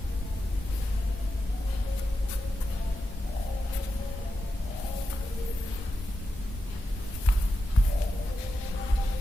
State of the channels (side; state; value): both; normal; correlation 0.89